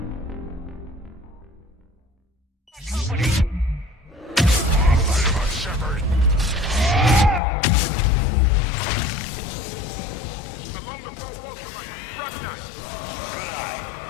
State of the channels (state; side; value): drops out; right; at 7.4 s